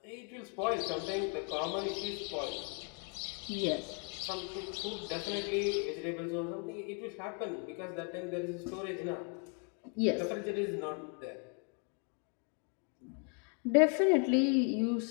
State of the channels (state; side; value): quieter; right; 39.2 dB